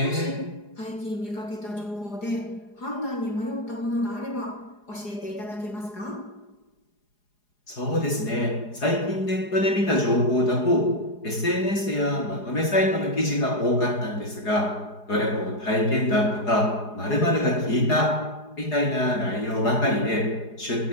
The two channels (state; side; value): late; right; 4.8 ms